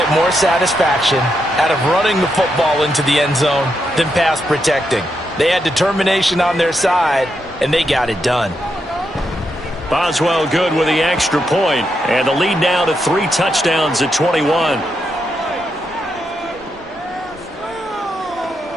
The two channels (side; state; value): both; normal; correlation 0.82